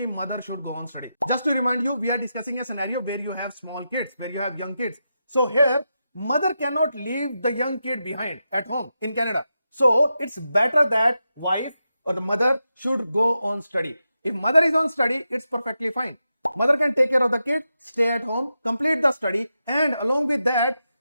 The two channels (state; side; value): inverted; both; correlation -0.88